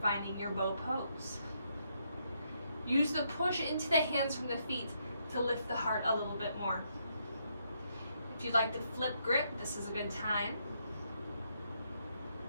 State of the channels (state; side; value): inverted; both; correlation -0.76